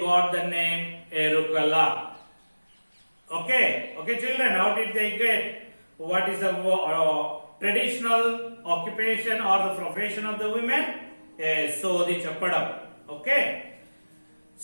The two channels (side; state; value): both; inverted; correlation -1.00